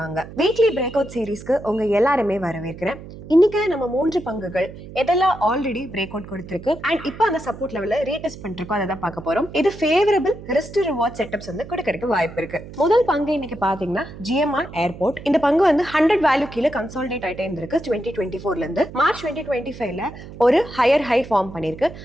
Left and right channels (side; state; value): right; noise; hum, 14 dB below the sound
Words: வீக்லி பிரேக் அவுட் சீரீஸ்க்கு உங்க எல்லாருமே வரவேற்கிறேன். இன்னைக்கு நம்ம 3 பங்குகள் எதெல்லாம் ஆல்ரெடி பிரேக் அவுட் கொடுத்திருக்கு அண்ட் இப்போ அந்த சப்போர்ட் லெவல்ல ரீடெஸ்ட் பண்ணிருக்கோம், அதை தான் பார்க்க போறோம். இது ஃபேவரபிள் ரிஸ்க் ரிவார்ட் செட்டப்ஸ் வந்து கொடுக்கறதுக்கு வாய்ப்பு இருக்கு. முதல் பங்கு இன்னைக்கு பாத்தீங்கன்னா GMR ஏர்போர்ட். இந்த பங்கு வந்து 100 வேல்யூ கீழே கன்சாலிடேட் ஆயிட்டே இருந்திருக்கு 2024ல இருந்து. மார்ச் 2025ல ஒரு ஹையர் ஹை ஃபார்ம் பண்ணிருக்கு